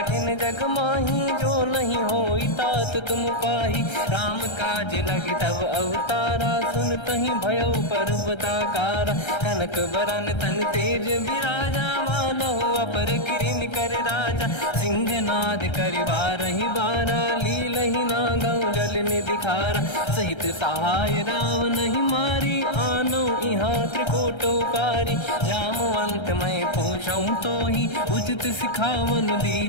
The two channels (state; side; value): late; right; 1.3 ms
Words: जग माही जो नहीं होई तात तुम पाही राम काज लगे तब अवतारा सुन तहि भयो पर्वताकारा कनक बरन तन तेज विराजा मानहु अपर किरिन कर राजा सिंह नाद कर बारहि बारा लीलहि नागौ जल निधिखारा सहित सहाय राम नहीं मारी आनो इहाँ त्रिकोटो पारी जामवंत मैं पूछऊँ तो ही उचित सिखावन